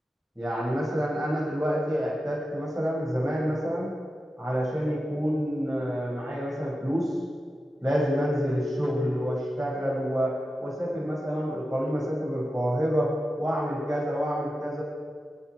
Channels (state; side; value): normal; both; correlation 0.91